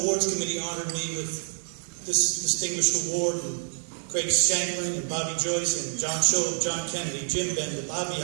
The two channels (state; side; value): silent; left; digital silence